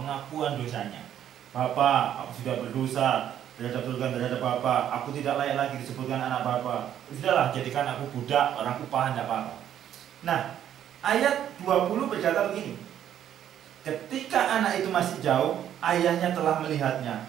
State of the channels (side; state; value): left; quieter; 10.4 dB